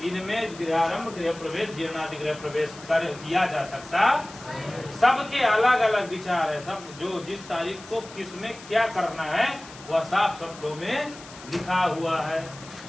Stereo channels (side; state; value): left; noise; hiss, 18 dB below the sound